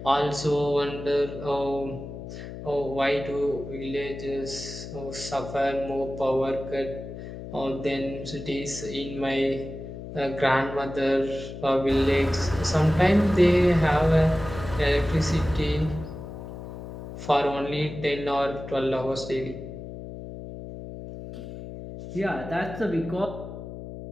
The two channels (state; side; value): noise; left; hum, 10 dB below the sound